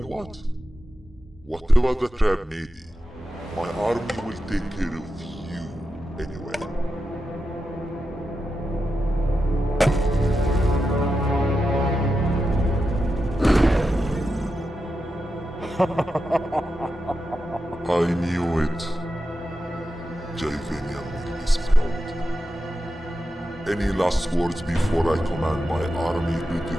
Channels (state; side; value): normal; both; correlation 0.89